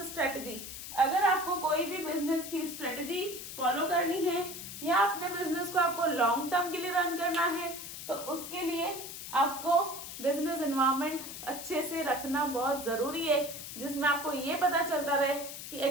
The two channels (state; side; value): noise; left; hiss, 9 dB below the sound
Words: strategy. अगर आपको कोई भी बिजनेस की स्ट्रेटजी फॉलो करनी है या अपने बिजनेस को आपको लॉन्ग टर्म के लिए रन करना है, तो उसके लिए आपको बिजनेस एनवायरनमेंट अच्छे से रखना बहुत जरूरी है, जिसमें आपको ये पता चलता रहे कि